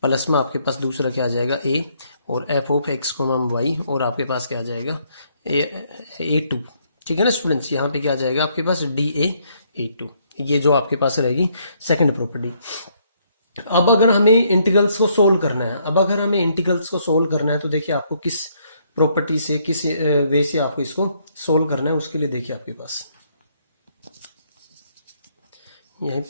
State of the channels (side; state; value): both; inverted; correlation -0.70